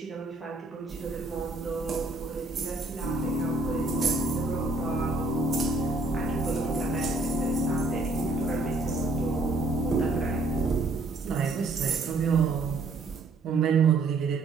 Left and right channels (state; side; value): quieter; left; 3.2 dB